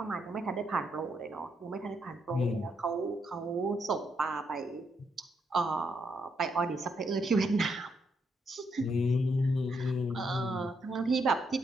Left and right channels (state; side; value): normal; both; correlation 0.77